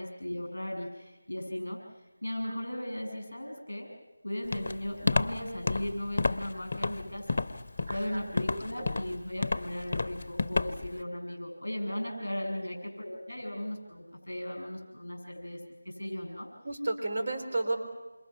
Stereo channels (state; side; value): inverted; both; correlation -0.96